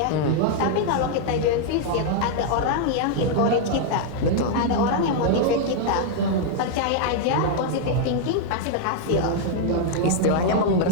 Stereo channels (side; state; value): both; different; correlation -0.01